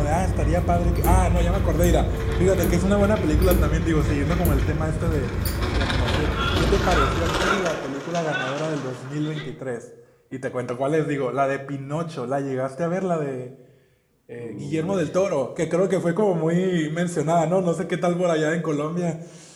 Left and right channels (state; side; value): identical; both; correlation 1.00